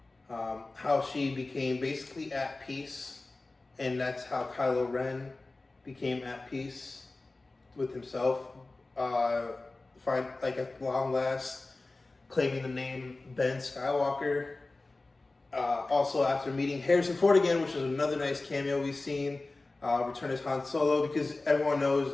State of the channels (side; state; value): right; quieter; 3.2 dB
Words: how she became basically at peace, and that's how Kylo Ren became at peace with himself. At long last, claiming the name Ben Skywalker. Also, after meeting Harrison Ford again, which is another nice cameo we've seen, return as Han Solo, because everyone